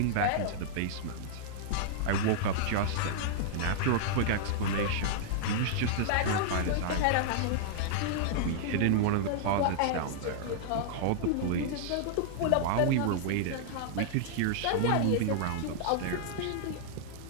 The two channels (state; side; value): different; both; correlation -0.01